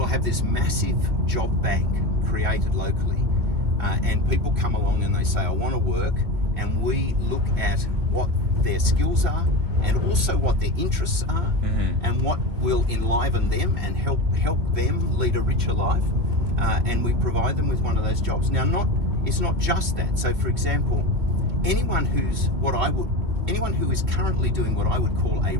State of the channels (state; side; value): late; left; 2.8 ms